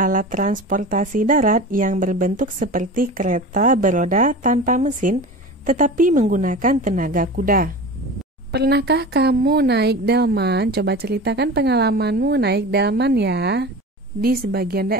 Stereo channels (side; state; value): both; normal; correlation 0.33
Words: transportasi darat yang berbentuk seperti kereta beroda tanpa mesin, tetapi menggunakan tenaga kuda. Pernahkah kamu naik delman? Coba ceritakan pengalamanmu naik delman ya. Di sebagian